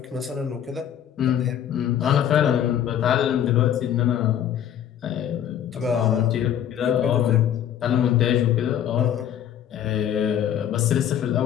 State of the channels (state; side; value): quieter; right; 10.0 dB